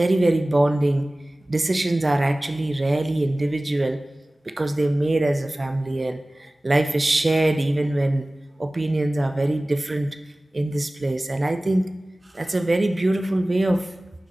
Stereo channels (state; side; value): normal; both; correlation 0.98